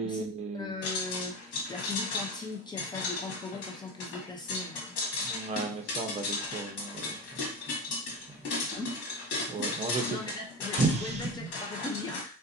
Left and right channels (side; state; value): both; normal; correlation 0.24